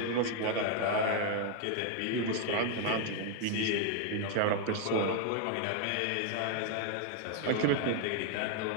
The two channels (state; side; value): different; both; correlation 0.00